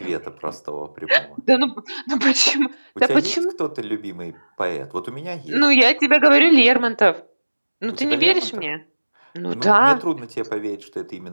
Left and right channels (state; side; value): inverted; both; correlation -1.00